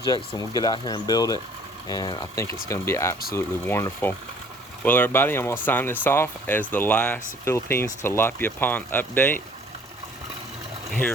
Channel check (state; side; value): normal; both; correlation 0.55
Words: and we'll get out here and build it, and I think it's going to be absolutely wonderful. Well, everybody, I'm going to sign this off as the last Philippines tilapia pond update